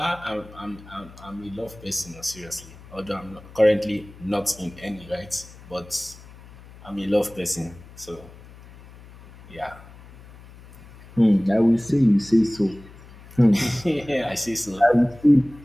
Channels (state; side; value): noise; left; hum, 20 dB below the sound